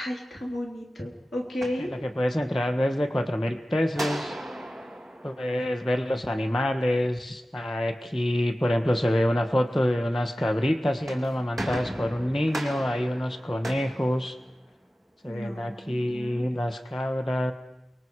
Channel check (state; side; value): normal; both; correlation 0.95